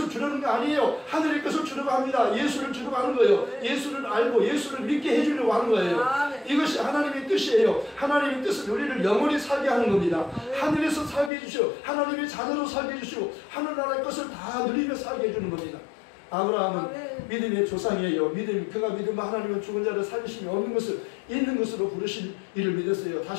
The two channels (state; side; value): drops out; right; at 11.3 s